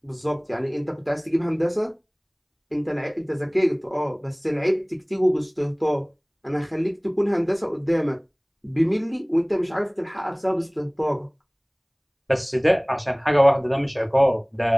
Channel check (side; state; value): both; identical; correlation 1.00